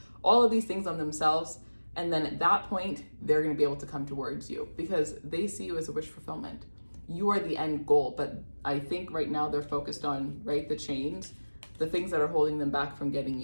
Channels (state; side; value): inverted; both; correlation -1.00